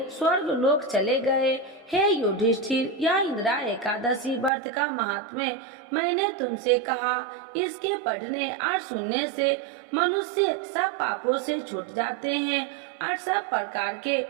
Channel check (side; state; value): left; drops out; at 4.5 s